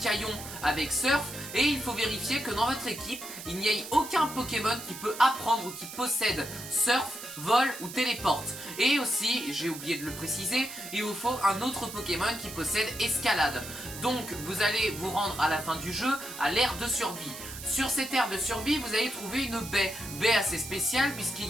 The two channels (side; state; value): right; noise; hiss, 11 dB below the sound